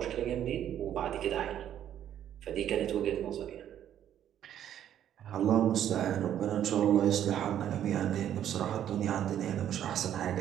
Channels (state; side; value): quieter; left; 10.6 dB